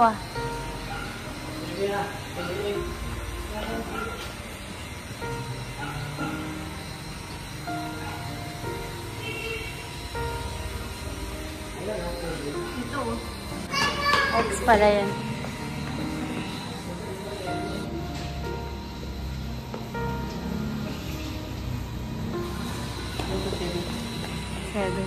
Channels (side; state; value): both; identical; correlation 1.00